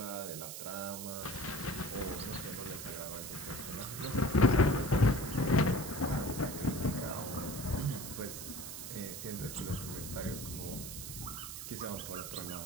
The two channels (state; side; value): noise; right; hiss, 8 dB below the sound